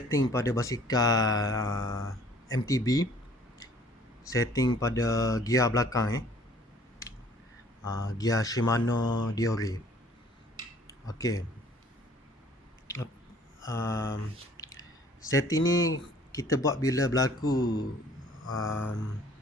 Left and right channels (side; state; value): both; normal; correlation 0.55